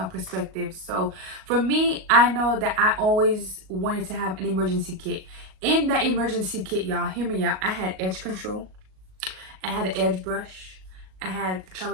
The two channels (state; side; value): late; left; 38 ms